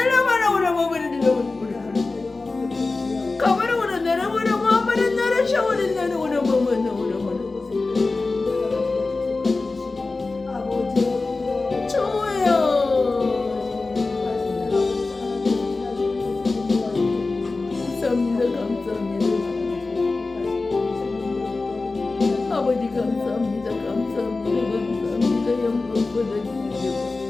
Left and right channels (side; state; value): right; quieter; 3.6 dB